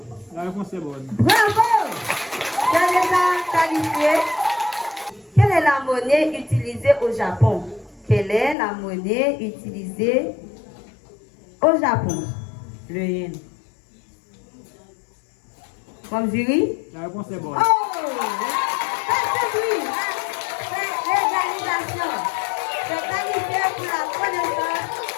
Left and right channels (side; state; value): right; drops out; at 8.6 s